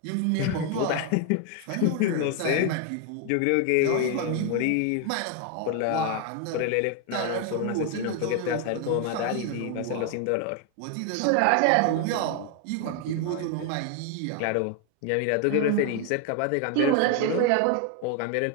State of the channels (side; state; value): both; different; correlation 0.01